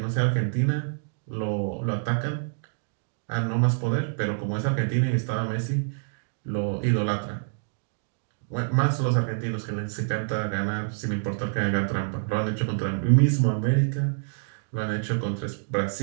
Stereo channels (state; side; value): silent; left; digital silence